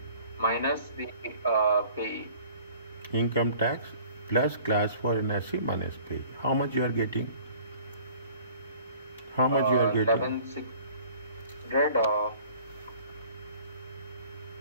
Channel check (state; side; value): inverted; both; correlation -0.51